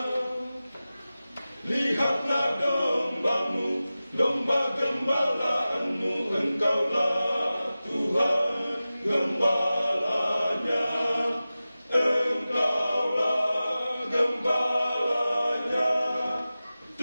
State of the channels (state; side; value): inverted; both; correlation -0.96